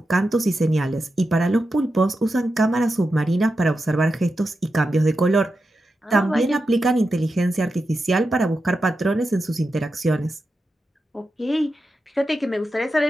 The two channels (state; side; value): normal; both; correlation 0.89